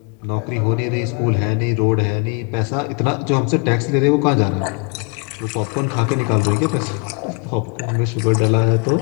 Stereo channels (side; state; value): right; quieter; 34.4 dB